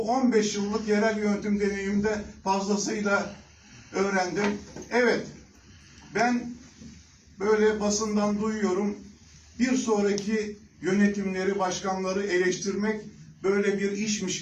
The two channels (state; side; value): identical; both; correlation 1.00